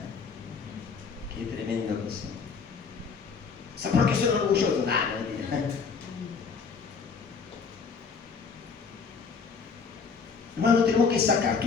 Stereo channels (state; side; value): quieter; right; 5.4 dB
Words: qué tremendo cosa. O sea, ¿por qué son orgullosos? Ah, no, mentira. Hermano, tenemos que sacar